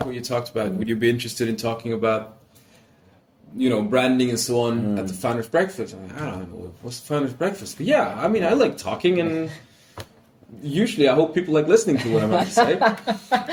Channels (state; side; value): identical; both; correlation 1.00